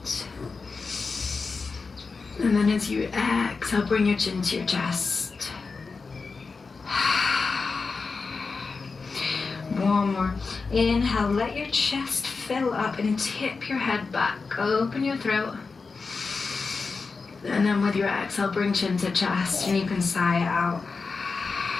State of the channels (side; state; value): right; quieter; 4.5 dB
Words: And then as you exhale, bring your chin to your chest. One more. Inhale, let your chest fill up and tip your head back. Open your throat. And then with your exhale, bring chin to chest and you can sigh it out.